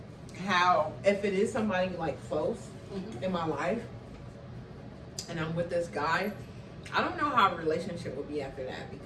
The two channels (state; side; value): identical; both; correlation 1.00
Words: how, if it is somebody like close in my life and I'm with this guy, I don't know how a relationship would be after that,